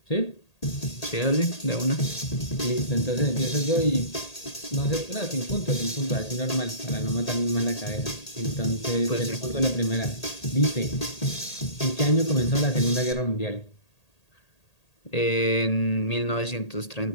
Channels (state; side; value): late; right; 1.8 ms